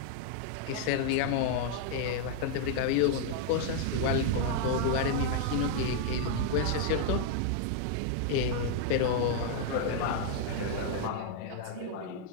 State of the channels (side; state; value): both; different; correlation 0.00